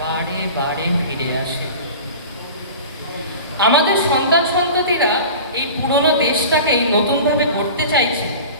বারে বারে ফিরে আসে। আমাদের সন্তান সন্ততিরা এই পুরনো দেশটাকেই নতুনভাবে গড়তে চাইছে।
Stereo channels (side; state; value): both; inverted; correlation -0.37